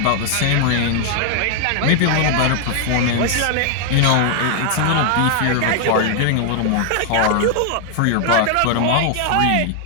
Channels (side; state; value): both; different; correlation 0.00